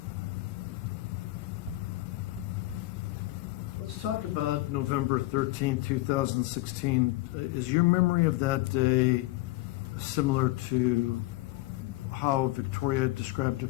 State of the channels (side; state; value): right; quieter; 19.1 dB